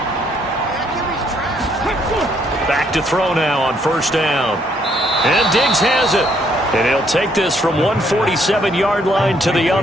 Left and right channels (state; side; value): normal; both; correlation 0.69